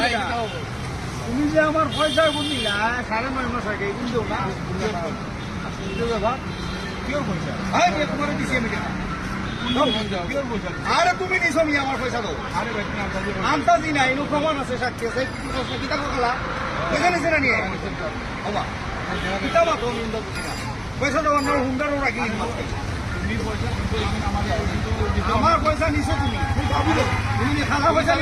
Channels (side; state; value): both; identical; correlation 1.00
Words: তুমি যে আমার পয়সা বুঝলি না 9.5 মাস আগে কিন্তু না ব্যাপার কিওর পয়সা তোমার দিচ্ছি আমি আরে তুমি নিছো নি আমার পয়সা দাও আরে ভাই আন্তাজি নাই নো প্রমাণ আছে সাক্ষী আছে কিতা করলা পয়সা নিছে না নিয়ে বাবা কিতা বা তো নিন্দা বুঝি না পয়সা দাও না হুন্ডারও রাখি আমার পয়সা নিছো তুমি তুমি খালা পয়সা